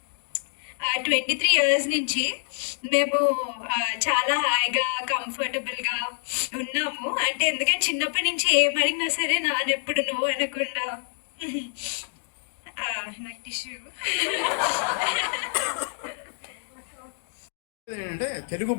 23 years నుంచి మేము చాలా హాయిగా కంఫర్టబుల్గా ఉన్నాము. అంటే ఎందుకంటే చిన్నప్పటి నుంచి ఏమడిగినా సరే నాన్న ఎప్పుడు నువ్వు అనకుండా నాకు టిష్యూ. ఏంటంటే తెలుగు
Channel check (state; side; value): silent; right; digital silence